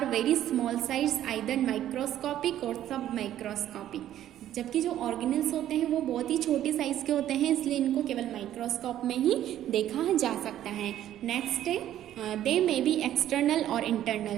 very small size, either microscopic और सब माइक्रोस्कोपिक। जबकि जो ऑर्गेनेल्स होते हैं वो बहुत ही छोटे साइज के होते हैं, इसलिए इनको केवल माइक्रोस्कोप में ही देखा जा सकता है। नेक्स्ट है दे मे बी एक्सटर्नल और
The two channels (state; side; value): quieter; left; 12.0 dB